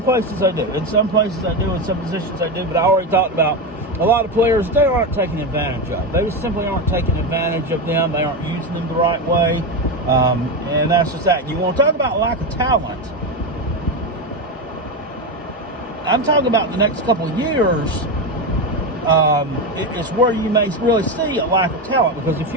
places I do. In some places I do. In some positions I do. But I already talked about a lot of players, they aren't taking advantage of. They just simply aren't taking advantage of them. They aren't using them the right way. And that's just that. You want to talk about lack of talent. I'm talking about the next couple of years. It's where you may really see a lack of talent. Because if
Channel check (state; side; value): normal; both; correlation 0.14